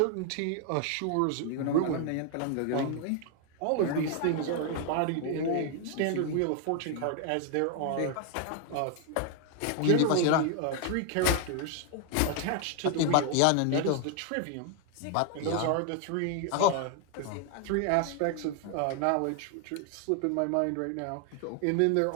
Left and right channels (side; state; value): both; different; correlation 0.00